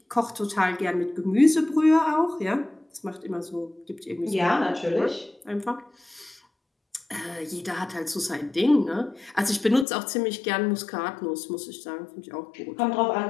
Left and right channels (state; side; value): drops out; right; at 9.9 s